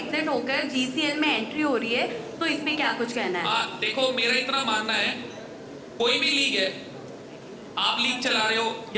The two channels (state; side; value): identical; both; correlation 1.00